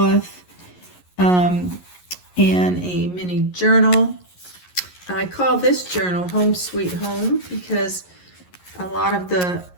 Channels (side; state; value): right; late; 11 ms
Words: and a mini journal. I call this journal Home Sweet Home because a lot of the